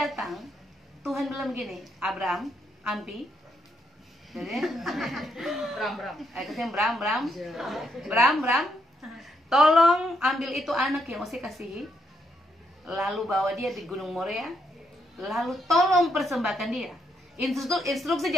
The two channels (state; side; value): normal; both; correlation 0.77